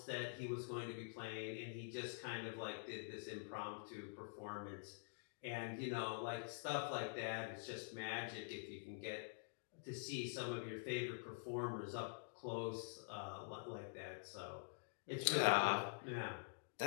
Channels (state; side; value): silent; right; digital silence